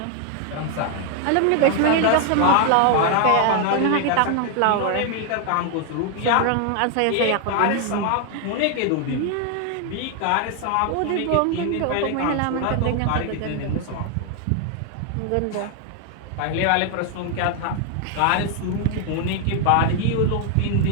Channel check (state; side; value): different; both; correlation 0.00